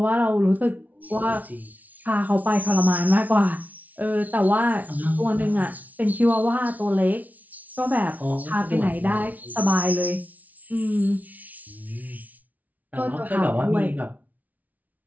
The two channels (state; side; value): late; left; 0.074 ms